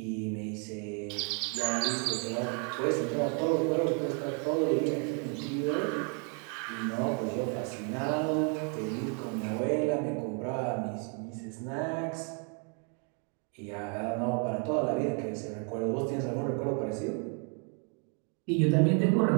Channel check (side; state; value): left; quieter; 39.3 dB